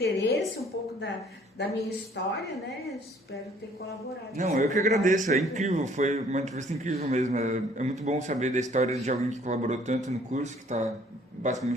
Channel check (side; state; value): both; normal; correlation 0.58